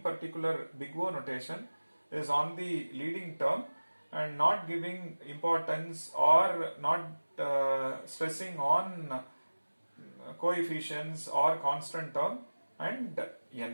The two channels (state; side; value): inverted; both; correlation -1.00